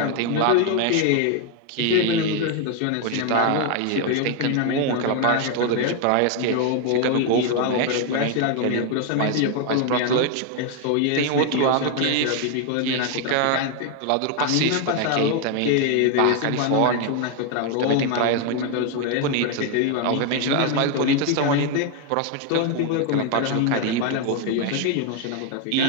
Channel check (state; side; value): different; both; correlation 0.01